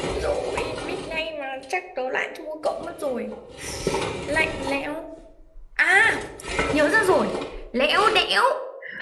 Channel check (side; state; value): both; identical; correlation 1.00